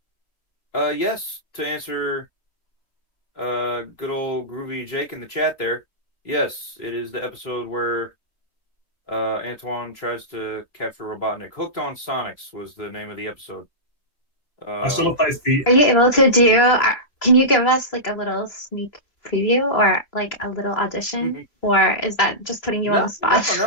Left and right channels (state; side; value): late; right; 3.1 ms